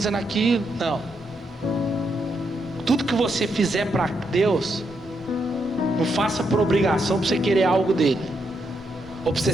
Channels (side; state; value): both; normal; correlation 0.80